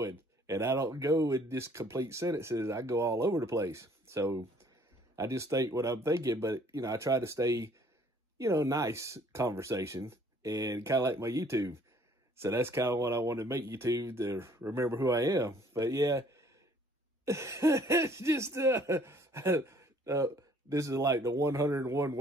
and I don't go in just complete sentences. I go all over the place. So I just think what I'm thinking, but, you know, I try to stay, you know, nice conversation, and kind of like my YouTube. So that's kind of what I want to make YouTube, to remember who I am. But yeah, it's just, this is like the 101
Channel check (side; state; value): both; normal; correlation 0.59